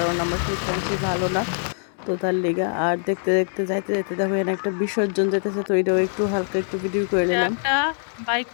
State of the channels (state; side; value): silent; right; digital silence